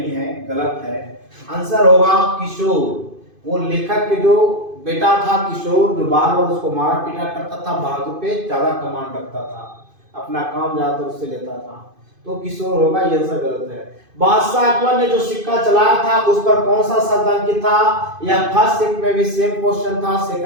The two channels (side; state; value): left; late; 2.5 ms